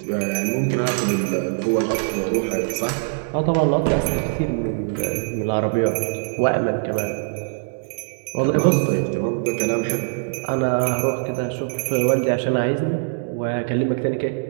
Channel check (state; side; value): silent; left; digital silence